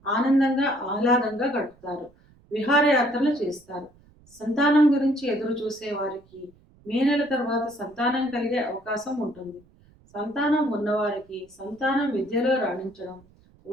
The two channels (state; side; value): noise; right; rumble, 29 dB below the sound